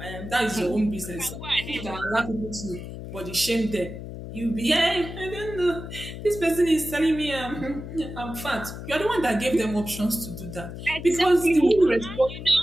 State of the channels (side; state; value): left; noise; hum, 10 dB below the sound